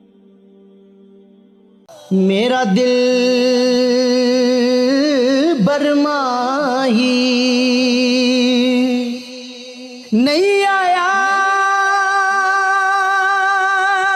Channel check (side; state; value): both; identical; correlation 1.00